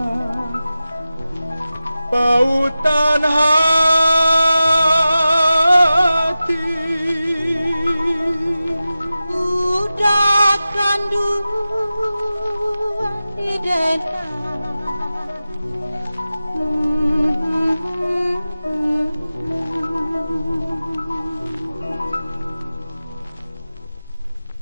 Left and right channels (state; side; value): inverted; both; correlation -0.94